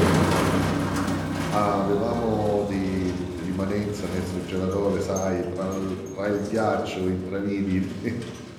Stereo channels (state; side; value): identical; both; correlation 1.00